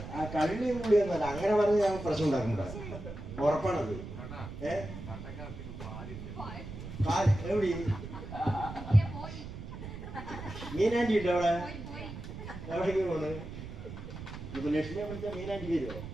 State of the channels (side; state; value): right; noise; rumble, 10 dB below the sound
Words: ആ കള്ളി കൂടിയൊന്നുമല്ല അങ്ങനെ പറഞ്ഞ് ഞാൻ പ്രശ്നം ഉണ്ടാക്കണ്ട ഉറപ്പാണത് എവിടെ മീനാൻറ്റി ഉണ്ടോ അവിടെ എവിടേക്ക് പോണ് ഇപ്പൊ ലക്ഷ്മിയെ വിളിച്ചാൽ മീനാൻറ്റി വരുമോ